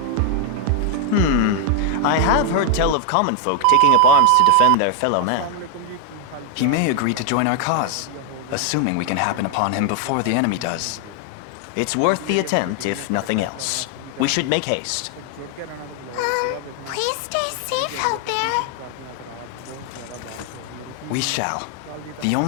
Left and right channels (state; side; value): different; both; correlation 0.00